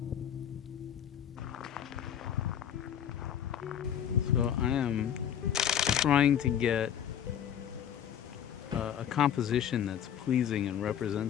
So I am trying to get a composition that's pleasing and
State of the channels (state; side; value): quieter; right; 9.2 dB